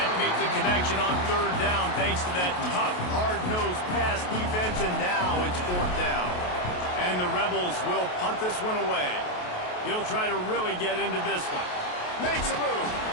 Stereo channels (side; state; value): right; late; 28 ms